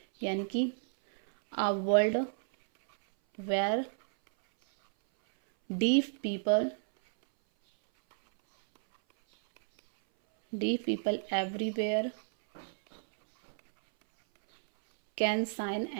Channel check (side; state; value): left; silent; 57 dB below the other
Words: यानी कि a world where deaf people everywhere can sign